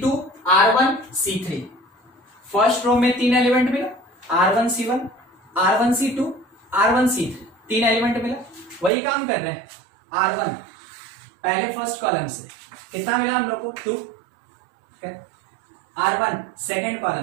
R1 C3, first row में 3 एलिमेंट मिला, R1 C1 R1 C2 R1 C3, 3 element मिला, वही काम कर रहे हैं। R1 पहले फर्स्ट कॉलम से कितना मिला हम लोग को 2, R1 सेकेंड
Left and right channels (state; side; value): drops out; left; at 8.9 s